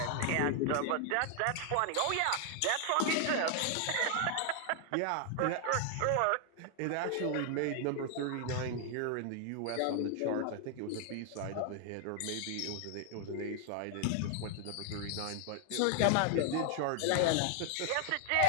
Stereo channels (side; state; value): both; different; correlation 0.00